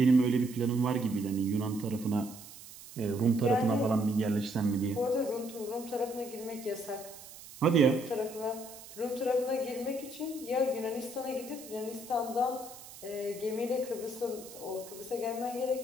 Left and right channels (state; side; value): noise; right; hiss, 16 dB below the sound